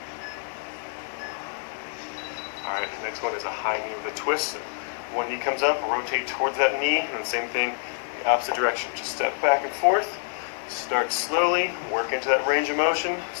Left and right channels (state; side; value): silent; right; 60 dB below the other